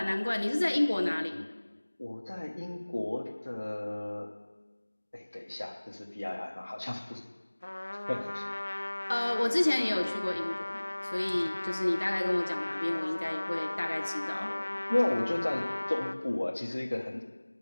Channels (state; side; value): inverted; both; correlation -1.00